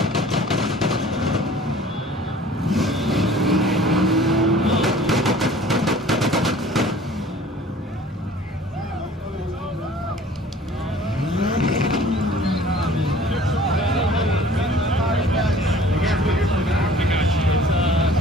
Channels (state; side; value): normal; both; correlation 0.49